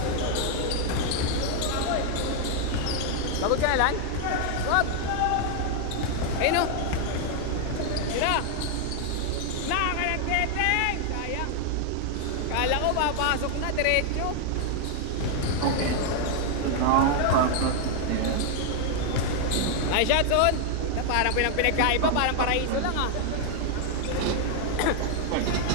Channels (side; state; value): both; different; correlation 0.00